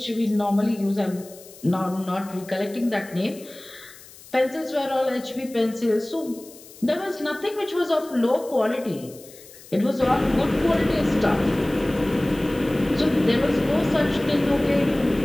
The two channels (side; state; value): left; noise; hiss, 20 dB below the sound